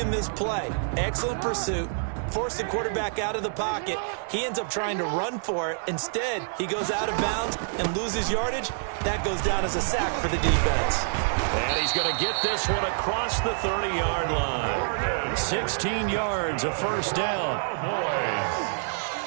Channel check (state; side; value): silent; left; digital silence